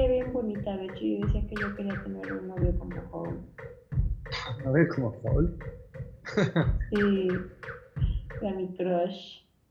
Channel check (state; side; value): identical; both; correlation 1.00